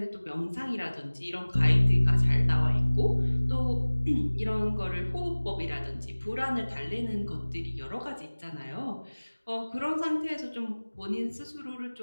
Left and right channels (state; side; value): inverted; both; correlation -1.00